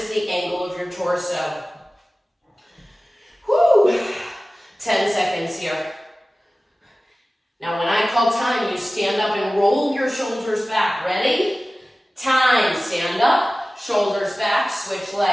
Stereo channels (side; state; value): both; normal; correlation 0.97